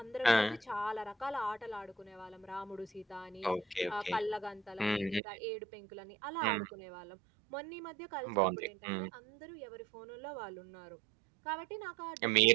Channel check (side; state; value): left; drops out; at 5.2 s